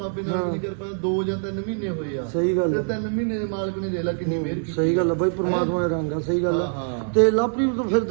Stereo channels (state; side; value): silent; left; digital silence